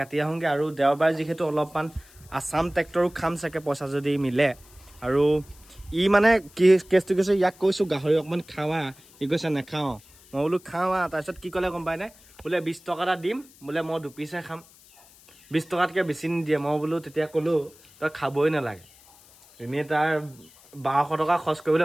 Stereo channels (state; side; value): noise; left; hiss, 25 dB below the sound